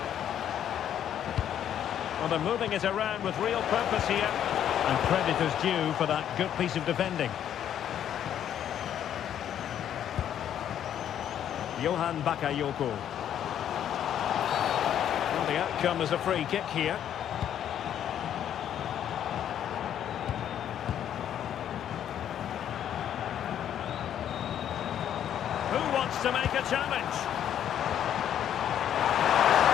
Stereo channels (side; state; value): right; quieter; 10.1 dB